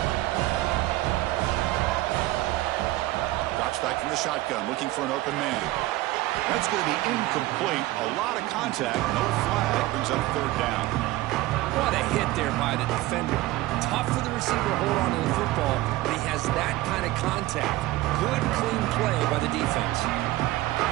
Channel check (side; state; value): left; quieter; 17.7 dB